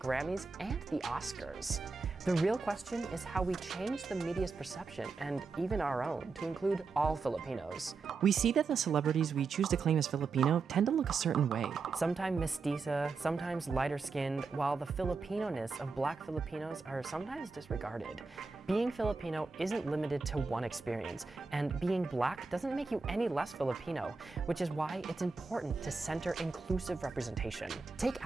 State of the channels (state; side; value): quieter; left; 4.4 dB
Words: and the Oscars. The real question is how we change the media's perception, and even our own, to include all Filipinos. We see that the celebrities we choose to claim as Filipino tend to look a certain way. Sometimes mestiza, sometimes lighter-skinned, while the Filipino-ness of Black Filipinos are sometimes disregarded. Being Filipino isn't limited to one experience, and being Black doesn't make you any less Filipino, which is why it's important to center inclusive representation. Take